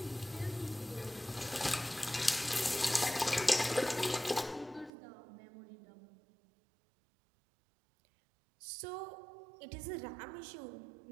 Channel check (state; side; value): drops out; left; at 4.9 s